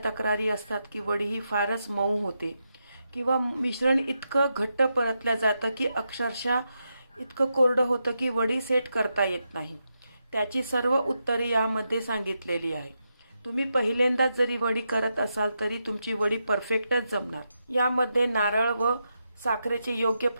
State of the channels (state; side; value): inverted; both; correlation -0.85